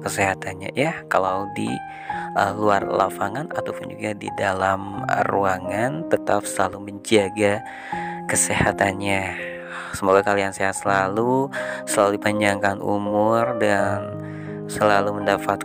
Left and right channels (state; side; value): identical; both; correlation 1.00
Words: ya. Kalau di luar lapangan ataupun juga di dalam ruangan, tetap selalu menjaga kesehatannya. Semoga kalian sehat selalu dipanjangkan umur, dan selalu